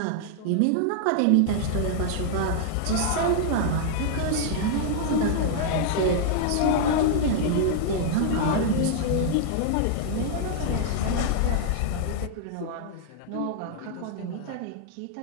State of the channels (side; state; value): both; different; correlation -0.01